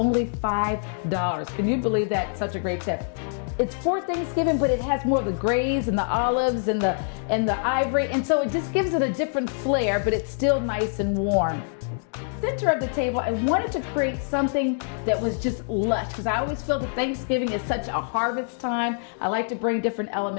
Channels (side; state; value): right; silent; digital silence